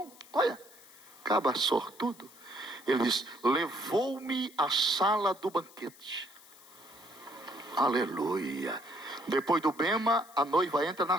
Olha, caba sortudo. Ele diz: levou-me à sala do banquete. Aleluia. Depois do bema, a noiva entra na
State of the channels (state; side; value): noise; left; hiss, 22 dB below the sound